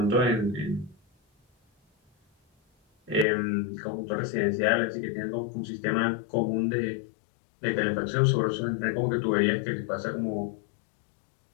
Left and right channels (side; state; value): right; drops out; at 3.2 s